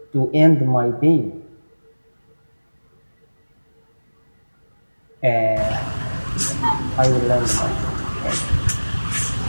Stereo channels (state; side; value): inverted; both; correlation -1.00